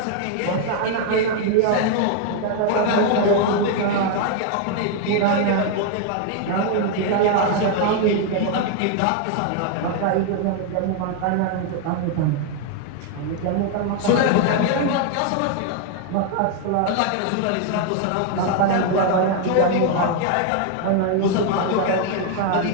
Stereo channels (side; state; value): both; different; correlation 0.00